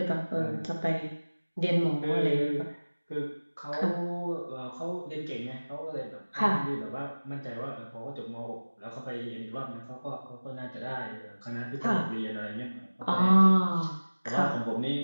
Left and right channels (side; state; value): both; inverted; correlation -1.00